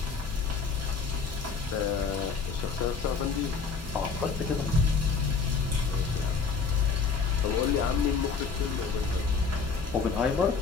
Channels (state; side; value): quieter; right; 5.2 dB